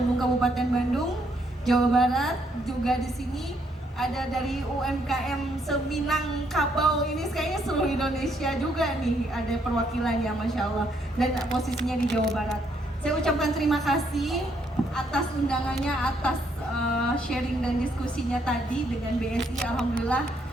Kabupaten Bandung, Jawa Barat. Juga di sini ada dari UMKM Seminang Kabau, ini kayaknya seluruh Indonesia juga nih, ada perwakilan ya, Masya Allah, dan posisinya di Jawa Barat. Saya ucapkan terima kasih atas undangannya, atas sharing dan diskusinya tadi dengan BSI. Alhamdulillah,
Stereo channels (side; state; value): both; normal; correlation 0.72